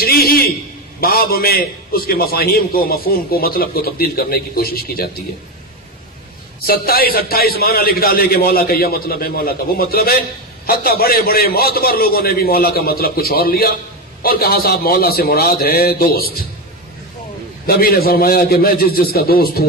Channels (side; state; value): both; normal; correlation 0.14